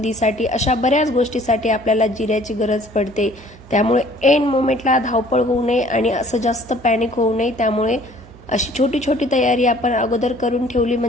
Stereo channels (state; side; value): noise; right; hum, 21 dB below the sound